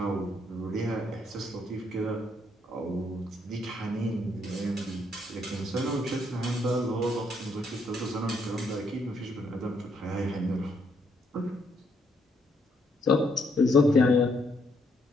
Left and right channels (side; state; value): both; normal; correlation 0.73